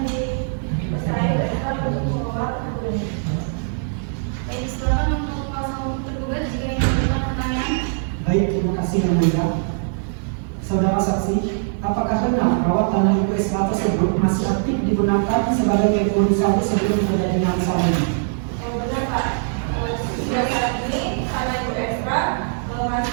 dipercaya Ibu Esra untuk mengelola kebun ini. Baik, silakan untuk kuasa hukum tergugat jika ingin memberikan pertanyaan. Baik, terima kasih yang mulia. Saudara saksi, apakah benar bahwa tanah Ibu Esra tersebut masih aktif digunakan sebagai kebun sawit sebelum terjadinya masalah ini? Benar Pak, sejak saat ini tanah Ibu Esra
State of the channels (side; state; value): left; silent; 60 dB below the other